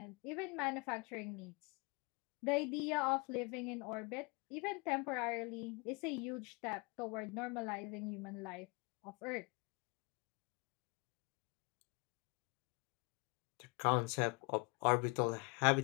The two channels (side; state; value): right; quieter; 29.6 dB